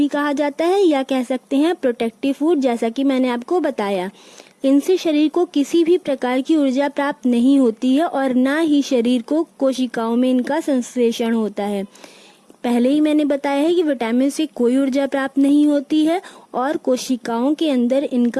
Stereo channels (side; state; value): both; identical; correlation 1.00